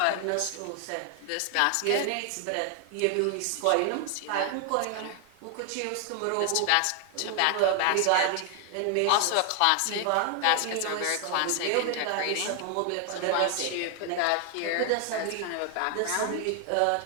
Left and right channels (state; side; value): different; both; correlation 0.00